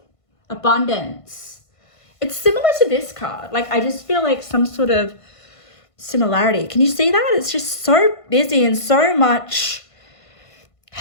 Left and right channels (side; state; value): right; late; 1.5 ms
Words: abundance. It's similar to this card. Like, I just feel like some sort of similarity. Can you see that? It's just so busy and so much